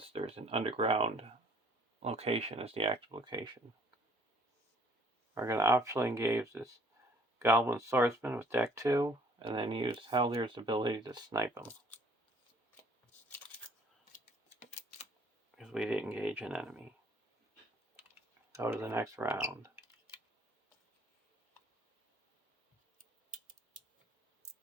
there's an underground location as the active location. We're going to optionally engage this Goblin Swordsman with deck 2, and then use Haldyr's ability to snipe him. because we didn't engage an enemy. Go to the next round.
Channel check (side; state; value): both; normal; correlation 0.58